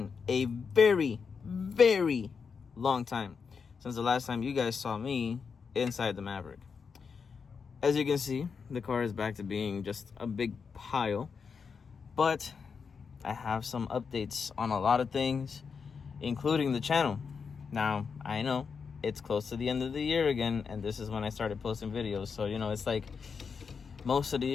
a very, very long time since the last time you guys saw me inside the Maverick. As you can see, the car is back to being just a big pile, but I have some updates on a lot of things, including the channel. Now, I know it's close to the end of the year again, and this is when I started posting videos, so it's like most of the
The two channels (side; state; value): right; quieter; 5.8 dB